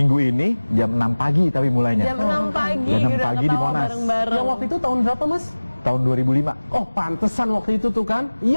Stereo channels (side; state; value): both; inverted; correlation -1.00